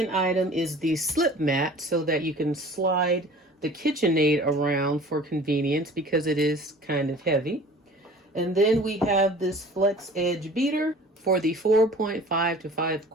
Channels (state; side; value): normal; both; correlation 0.46